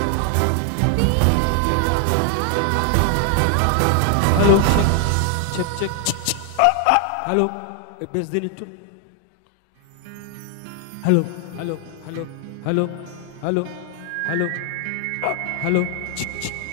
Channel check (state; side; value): different; both; correlation 0.00